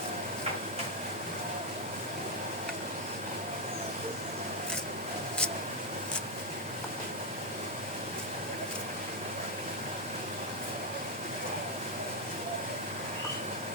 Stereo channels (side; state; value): both; normal; correlation 0.03